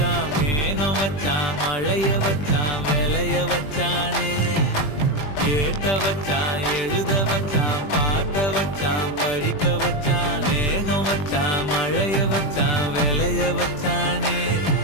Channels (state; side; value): late; right; 20 ms